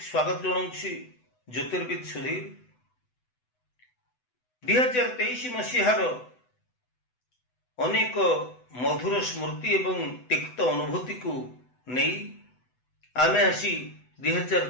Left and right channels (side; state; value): right; late; 8.0 ms